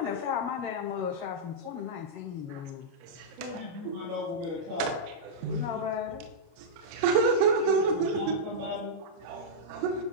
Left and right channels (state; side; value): late; left; 30 ms